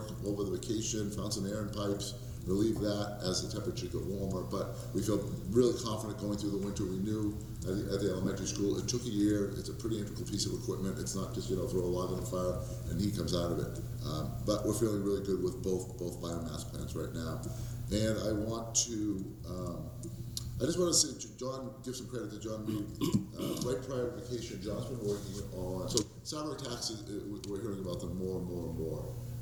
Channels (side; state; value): both; identical; correlation 1.00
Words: over the vacation, found some air in pipes, relieved that as the temperature got warmer. But we feel really confident going through the winter. We knew at the elementary school, it took a year. It's a pretty integral piece of equipment. It's not just, throw a log on the fire and heat comes out of it. But we're feeling really good with both biomass plants right now. And I want to, I just want to say, John, give some credit to John Reed. Right prior to vacation, John's been working on, so salary taxes, we're hearing about them more and more and more.